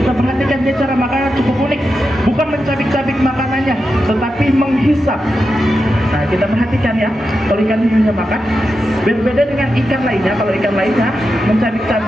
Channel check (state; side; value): normal; both; correlation 0.89